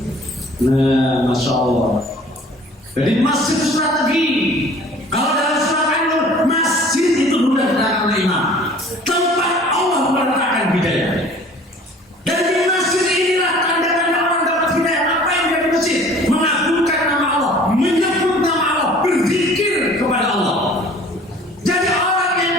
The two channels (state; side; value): normal; both; correlation 0.49